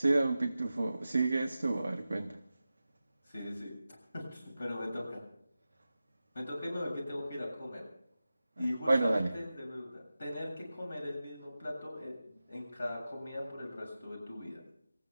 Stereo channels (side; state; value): both; inverted; correlation -0.94